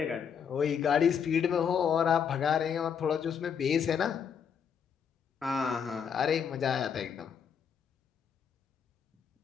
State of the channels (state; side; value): quieter; right; 7.3 dB